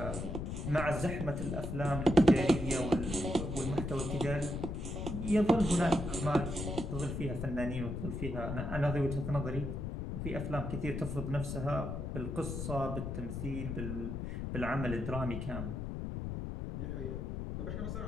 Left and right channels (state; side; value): noise; left; rumble, 4 dB below the sound